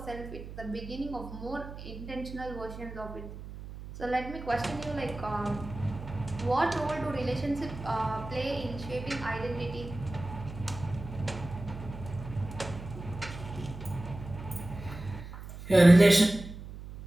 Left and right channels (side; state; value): right; noise; hum, 12 dB below the sound